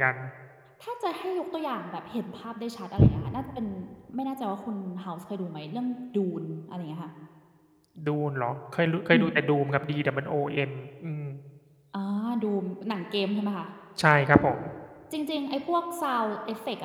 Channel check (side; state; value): both; identical; correlation 1.00